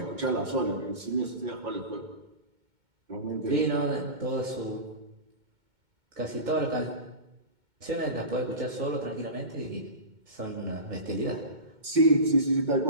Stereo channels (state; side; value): late; left; 2.2 ms